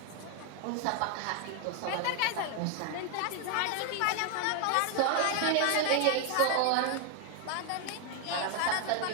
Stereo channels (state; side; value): different; both; correlation 0.00